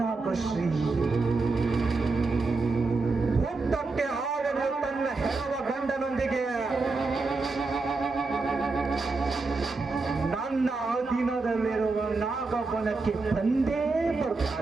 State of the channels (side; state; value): left; quieter; 3.8 dB